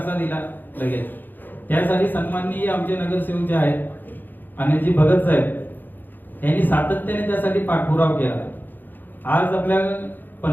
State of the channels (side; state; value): right; late; 0.089 ms